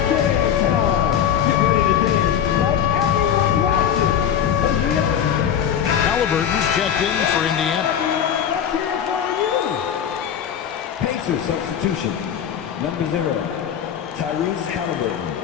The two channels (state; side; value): quieter; right; 9.0 dB